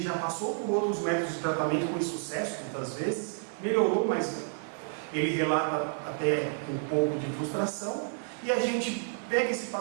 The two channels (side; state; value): left; silent; 58 dB below the other